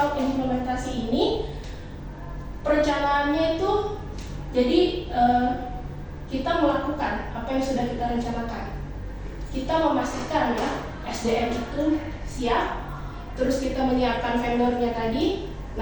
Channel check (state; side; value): identical; both; correlation 1.00